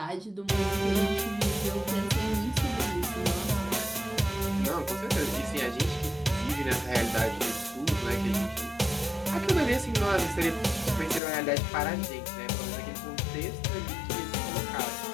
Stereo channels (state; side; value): drops out; right; at 11.2 s